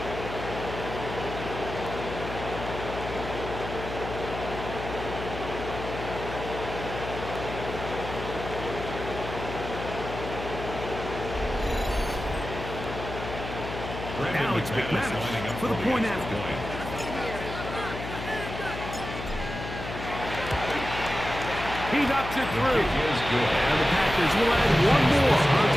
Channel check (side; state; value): left; noise; hum, 8 dB below the sound